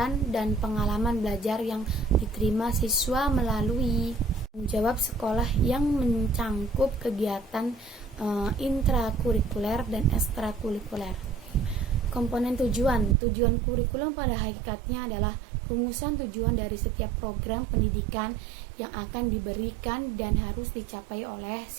dan pengalaman belajar yang diterima siswa melalui jawab sekolah yang mencangkup kegiatan intrakurikuler dan ekstrakurikuler. Komponen tujuan. Tujuan kurikulum pada hakikatnya adalah rumusan tujuan dari setiap program pendidikan yang akan diberikan dan harus dicapai oleh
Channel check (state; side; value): drops out; left; at 13.2 s